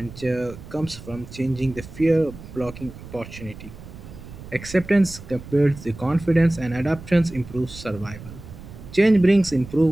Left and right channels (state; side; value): noise; right; rumble, 15 dB below the sound